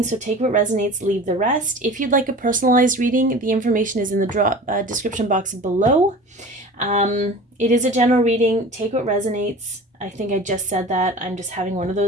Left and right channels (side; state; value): both; normal; correlation 0.38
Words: so take what resonates, leave the rest. If you'd like a personalized reading, the information is in the description box below. It is a general reading. Take what resonates. I think I just said that. I'm just having one of